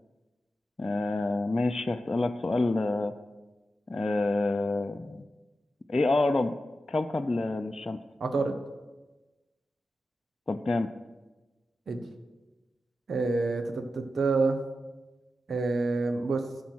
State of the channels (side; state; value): both; normal; correlation 0.91